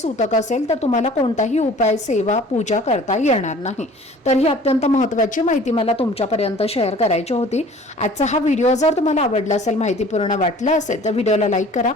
असेल तर तुम्हाला कोणताही उपाय, सेवा, पूजा करता येणार नाही. तर ही अत्यंत महत्त्वाची माहिती मला तुमच्यापर्यंत शेअर करायची होती. आजचा हा व्हिडिओ जर तुम्हाला आवडला असेल, माहितीपूर्ण वाटला असेल तर व्हिडिओला लाईक करा.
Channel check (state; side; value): normal; both; correlation 0.48